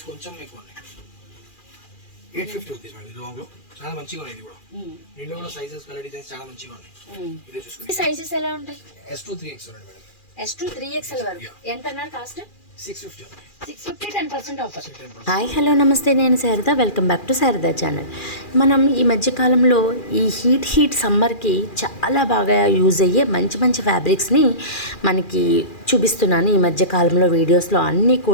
కొంచెం ఎక్కువ ఉన్నాయి, 850 రూపీస్ మేడం. ఇది లాంగ్ లో చాలా మంచిగా ఉన్నాయి. ఇది కూడా దీంట్లో కూడా సైజెస్, కలర్ డిజైన్స్ చాలా మంచిగా ఉన్నాయి. ఇదే చూసుకోండి. సైజెస్ ఎలా ఉంటాయి? S2 3XL ఉంది మేడం. S2 3XL వరకు ఎంత అన్నారు కాస్ట్? 650. 10% ఆఫర్. హాయ్ హలో నమస్తే, నేను Sharada. Welcome back to Sharada channel. మనం ఈ మధ్యకాలంలో ఈ హీట్ సమ్మర్కి చాలా బాగా యూజ్ అయ్యే మంచి మంచి ఫ్యాబ్రిక్స్ని మనకి చూపిస్తున్నాను ఈ మధ్యకాలంలో వీడియోస్లో. అన్నీ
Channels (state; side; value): late; right; 2.4 ms